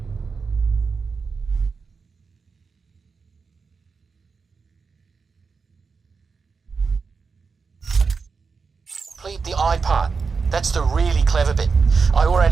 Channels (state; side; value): quieter; left; 5.0 dB